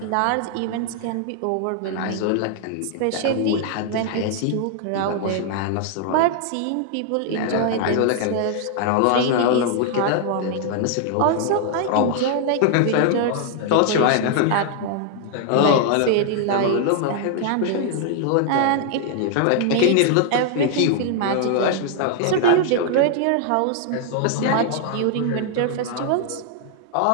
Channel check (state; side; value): different; both; correlation 0.00